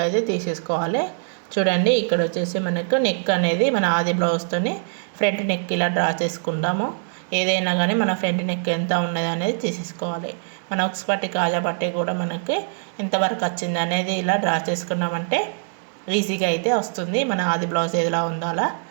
అయితే తీసేసుకోవాలి. చూడండి ఇక్కడ వచ్చేసి మనకు నెక్ అనేది మన ఆది బ్లౌజ్తోని ఫ్రంట్ నెక్ ఇలా డ్రా చేసుకుంటాము. ఏదైనా కానీ మన ఫ్రంట్ నెక్ ఎంత ఉన్నది అనేది తీసేసుకోవాలి. మన ఉక్స్ పట్టి కాజా పట్టి కూడా మనకి ఎంతవరకు వచ్చింది అనేది ఇలా డ్రా చేసుకున్నామంటే ఈజీగా అయితే వస్తుంది. మన ఆది బ్లౌజ్ ఏదిలా ఉందో అలా.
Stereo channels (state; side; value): silent; left; 63 dB below the other